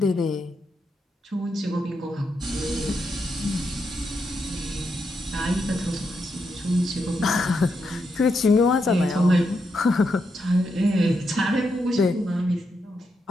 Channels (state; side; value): normal; both; correlation 0.82